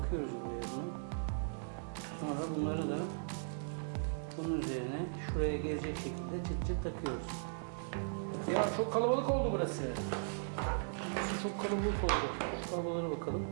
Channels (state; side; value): silent; left; digital silence